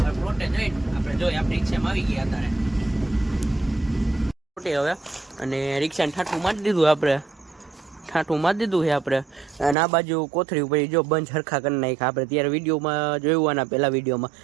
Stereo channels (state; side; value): drops out; left; at 9.8 s